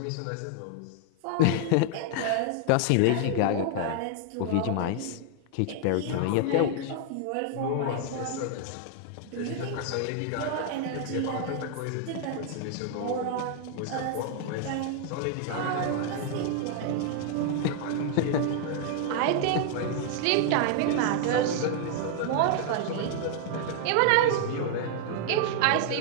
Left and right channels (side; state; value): both; different; correlation 0.00